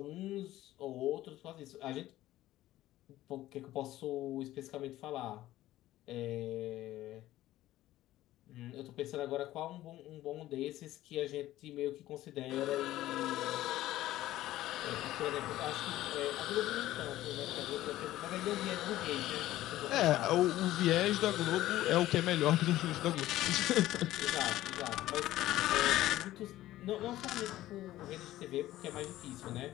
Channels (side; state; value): right; quieter; 15.0 dB